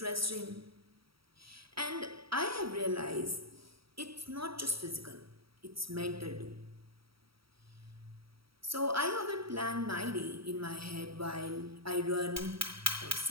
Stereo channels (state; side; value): late; left; 0.75 ms